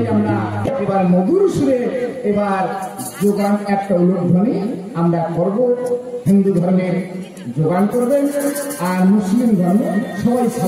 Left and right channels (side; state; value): both; identical; correlation 1.00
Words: আমরা এবার মধুর সুরে এবার যোগান একটা উলুধ্বনি আমরা করব। হিন্দু ধর্মের যোগান করবেন আর মুসলিম ধর্মে সবাই